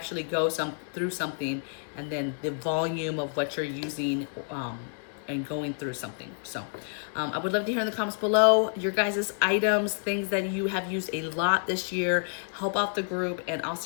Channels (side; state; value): right; silent; 59 dB below the other